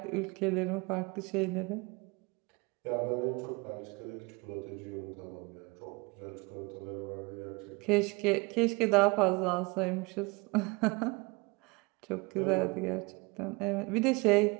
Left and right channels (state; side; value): quieter; left; 26.8 dB